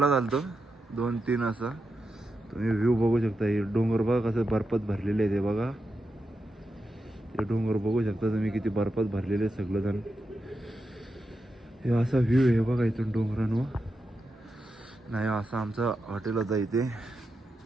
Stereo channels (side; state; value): both; normal; correlation 0.88